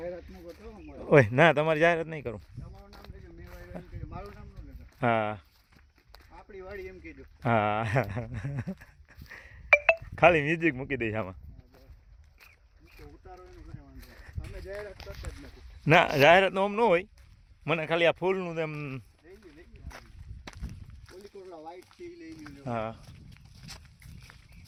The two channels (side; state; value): both; identical; correlation 1.00